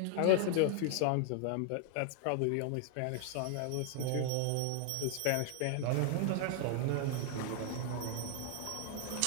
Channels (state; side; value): different; both; correlation 0.00